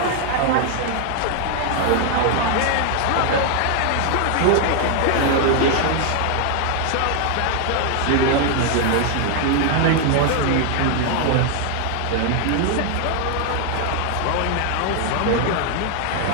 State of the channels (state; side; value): different; both; correlation 0.00